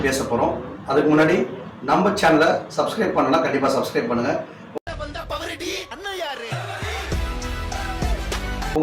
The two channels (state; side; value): identical; both; correlation 1.00